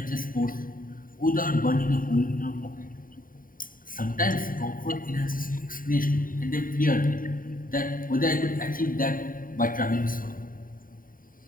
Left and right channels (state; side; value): late; right; 0.41 ms